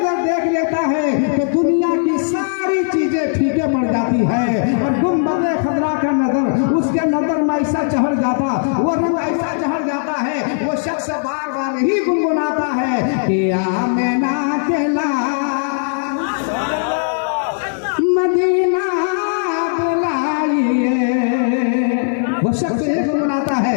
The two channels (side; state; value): right; silent; 65 dB below the other